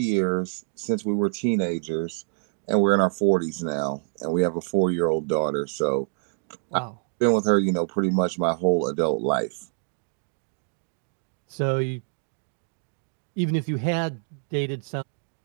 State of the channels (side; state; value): left; silent; digital silence